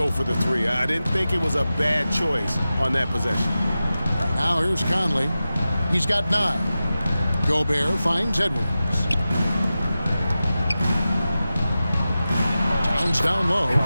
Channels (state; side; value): inverted; both; correlation -0.94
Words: for the 3. I didn't think it was a bad choice on that possession. Now here's Conley. He's got 9. Gobert finds Edwards. Towns down low.